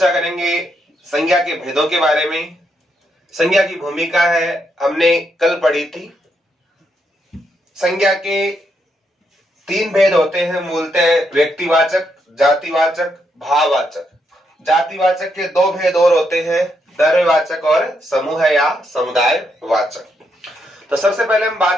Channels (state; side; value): normal; both; correlation 0.79